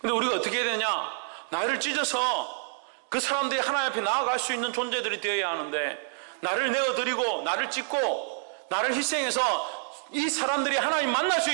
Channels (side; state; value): left; silent; 59 dB below the other